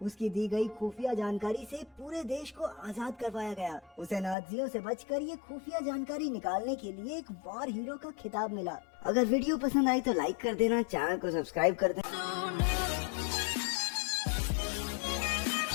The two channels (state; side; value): drops out; right; at 4.4 s